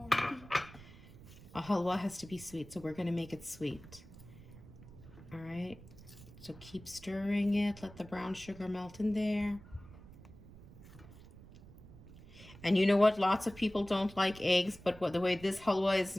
A halwa has to be sweet, so we're gonna make it sweet. All right, so keep stirring it. Let the brown sugar melt in there. And you know what? Lots of people don't like eggs, but the way this halwa is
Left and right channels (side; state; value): right; noise; rumble, 19 dB below the sound